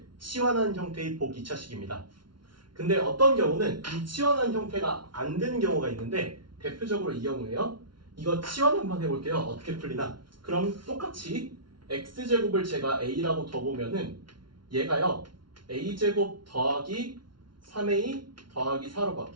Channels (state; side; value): late; left; 0.73 ms